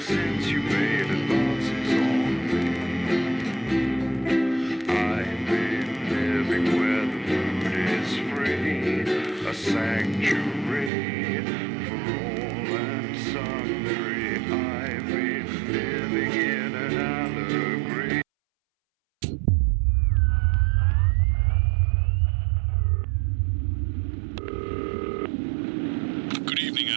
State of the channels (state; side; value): drops out; left; at 10.9 s